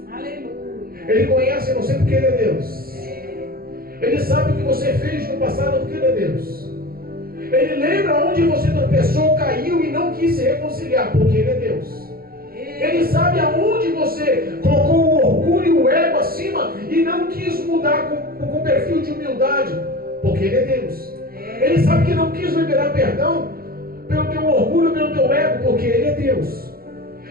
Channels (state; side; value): late; left; 0.43 ms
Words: Aleluia. Ele conhece você porque ele é Deus. Ele sabe o que você fez no passado porque ele é Deus. Ele lembra onde você tropeçou, caiu e não quis se reconciliar porque ele é Deus. Ele sabe aonde você colocou o orgulho e o ego acima e não quis mudar com perfil de humildade, porque ele é Deus. Ele sabe que não quis liberar perdão pelo teu orgulho, pelo teu ego, porque ele é Deus.